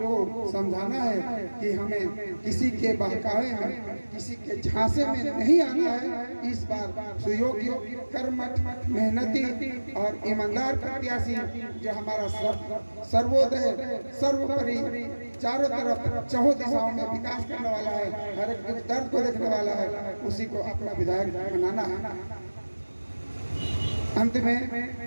समझाना है कि हमें किसी के बहकावे में, किसी के झांसे में नहीं आना है। इस बार सुयोग्य, कर्मठ, मेहनती और ईमानदार प्रत्याशी जो हमारा सर्वोदय, सर्वोपरि, चारों तरफ चहुँ दिशाओं में विकास करने वाला है, हर एक दुख दर्द को देखने वाला है, उसी को अपना विधायक बनाना है। अंत में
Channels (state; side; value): inverted; both; correlation -1.00